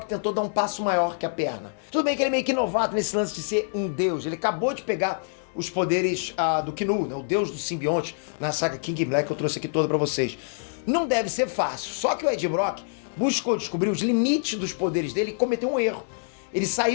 tentou dar um passo maior que a perna. Tudo bem que ele é meio que novato nesse lance de ser um deus. Ele acabou de pegar os poderes do Knu, né, o deus do simbionte, na saga King in Black, que eu trouxe aqui toda pra vocês. Não deve ser fácil, só que o Ed Brock buscou descobrir os limites dos poderes dele e cometeu um erro. Ele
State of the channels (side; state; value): right; silent; digital silence